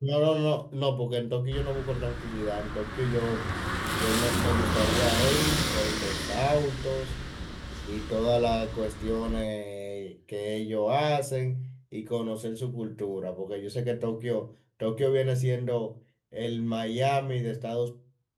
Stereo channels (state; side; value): identical; both; correlation 1.00